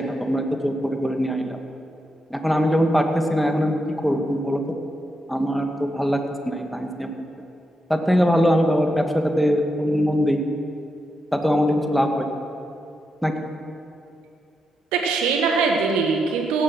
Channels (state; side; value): normal; both; correlation 0.84